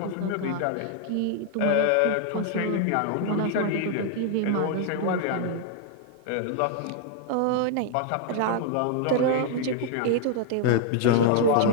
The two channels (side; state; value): both; different; correlation -0.01